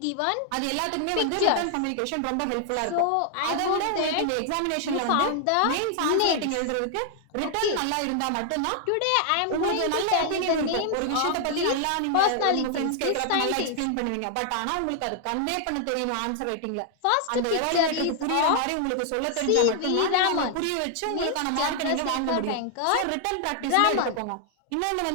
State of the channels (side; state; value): both; different; correlation 0.00